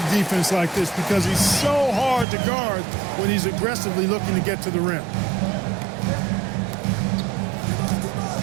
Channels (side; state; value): left; drops out; at 2.2 s